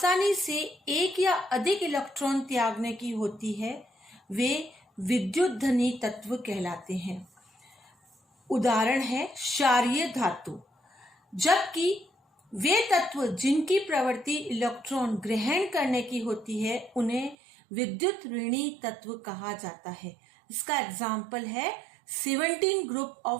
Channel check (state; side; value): drops out; left; at 17.4 s